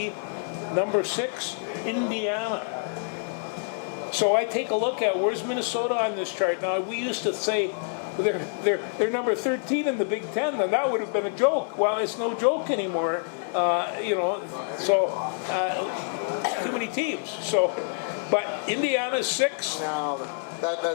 Number 6, Indiana. So I take a look at where's Minnesota on this chart. Now we used to say they're number 13 in the Big Ten, and that would have been a joke. Well, it's no joke anymore. So too many teams. So, but Indiana's 6. Now,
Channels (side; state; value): right; silent; 60 dB below the other